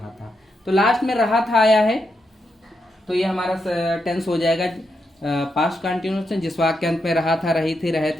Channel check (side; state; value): both; normal; correlation 0.83